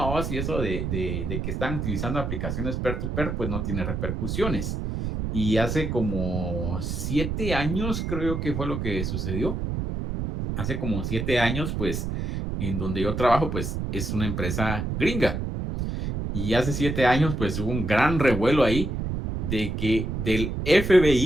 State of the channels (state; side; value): noise; right; rumble, 3 dB below the sound